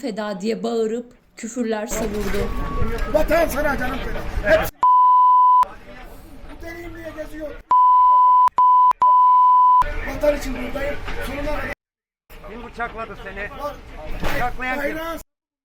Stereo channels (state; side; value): identical; both; correlation 1.00